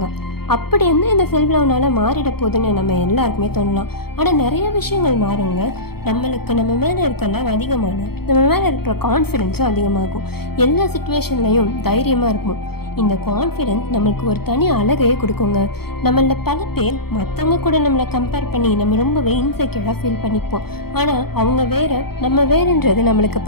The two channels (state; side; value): late; right; 0.96 ms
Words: அப்படி என்ன இந்த செல்ஃப் லவ்னால மாறிட போகுதுன்னு நம்ம எல்லாருக்குமே தோணலாம். ஆனால் நிறைய விஷயங்கள் மாறுங்க. நம்மளுக்கு நம்ம மேலே இருக்க லவ் அதிகமானால் நம்ம மேலே இருக்கிற கான்ஃபிடென்ஸும் அதிகமாகும். எல்லா சுச்சுவேஷன்லையும் தைரியமாக இருக்கும். இந்த கான்ஃபிடென்ஸ் நம்மளுக்கு ஒரு தனி அழகையே கொடுக்குங்க. நம்மள பல பேர் மற்றவங்க கூட நம்மளை கம்பேர் பண்ணி நம்ம ரொம்பவே இன்செக்யூராக ஃபீல் பண்ணிப்போம். ஆனால் அவங்க வேறு நம்ம வேறுன்றது நம்மளுக்கு